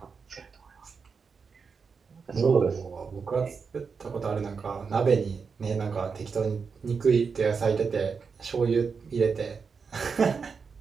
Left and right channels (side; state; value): left; quieter; 5.5 dB